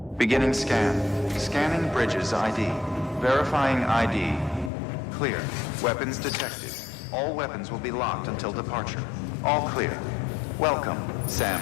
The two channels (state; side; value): drops out; right; at 4.7 s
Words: Beginning scan. Scanning bridges ID. Verifying ID. Clear. Weapons detected. All weapons will be locked until departure. All clear. Welcome,